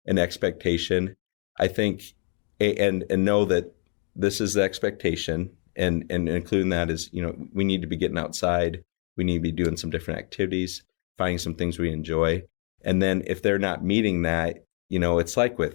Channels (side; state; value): right; quieter; 37.6 dB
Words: an expectation, I think, and know that this is the expectation, and including that is, we need to be getting outside. We need to be doing some different activities, finding some things we enjoy. And then if they're not meeting that, it's like